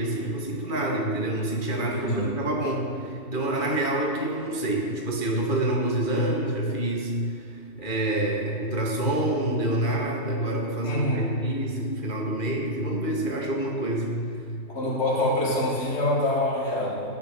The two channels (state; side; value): late; right; 2.4 ms